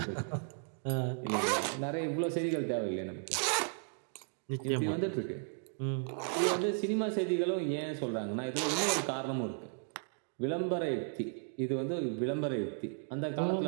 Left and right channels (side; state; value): left; silent; 55 dB below the other